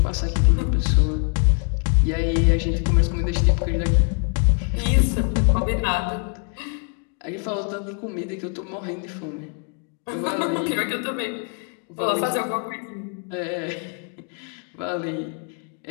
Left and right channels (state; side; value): quieter; right; 39.1 dB